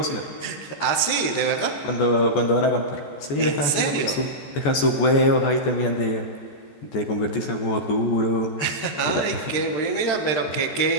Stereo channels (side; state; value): right; late; 14 ms